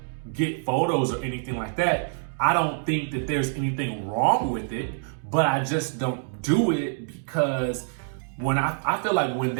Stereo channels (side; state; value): left; silent; digital silence